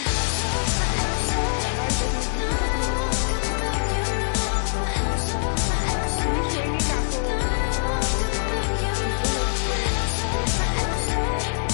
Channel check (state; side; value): silent; right; digital silence